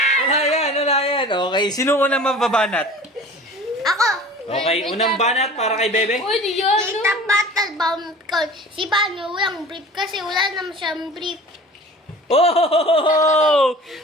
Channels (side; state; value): both; normal; correlation 0.41